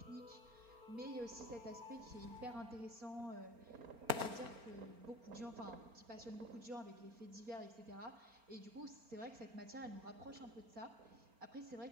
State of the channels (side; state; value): left; late; 4.4 ms